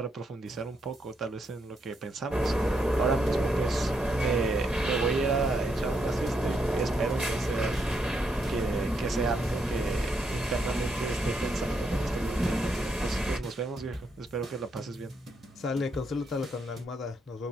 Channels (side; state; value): both; normal; correlation 0.78